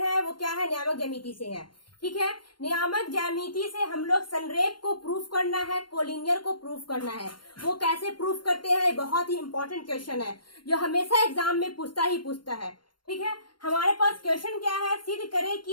वो क्या है? नियामक ज्यामिति से है। ठीक है, नियामक ज्यामिति से हम लोग संरेख को प्रूफ करना है, कोलिनियर को प्रूफ करना है। वो कैसे प्रूफ करते हैं? बहुत ही इंपॉर्टेंट क्वेश्चन है जो हमेशा एग्जाम में पूछता है। ठीक है, हमारे पास क्वेश्चन क्या है? सिद्ध करें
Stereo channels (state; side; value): late; right; 0.72 ms